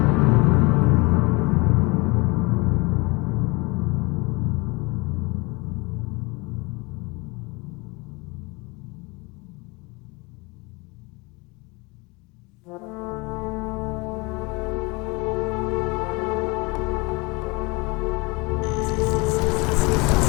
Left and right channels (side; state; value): right; quieter; 25.9 dB